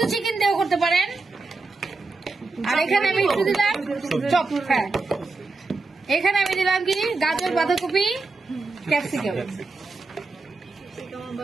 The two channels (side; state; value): left; quieter; 3.7 dB